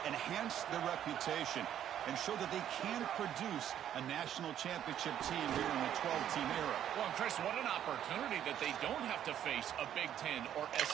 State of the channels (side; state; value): left; quieter; 10.4 dB